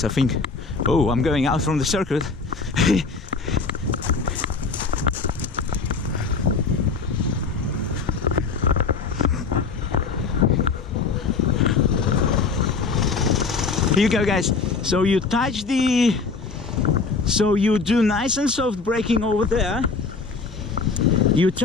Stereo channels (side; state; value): right; quieter; 4.5 dB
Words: I think, oh, I'm going out from the circuit. Here you go, guys. So you touch the, so you do nice and soft braking over there, you